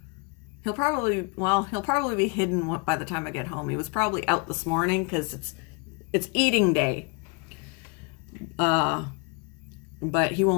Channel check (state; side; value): quieter; right; 31.9 dB